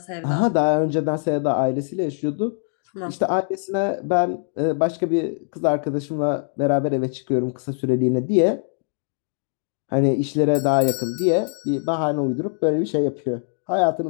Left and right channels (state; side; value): silent; right; 64 dB below the other